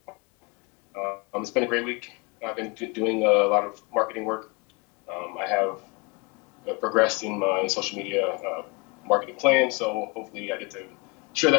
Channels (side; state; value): right; quieter; 28.5 dB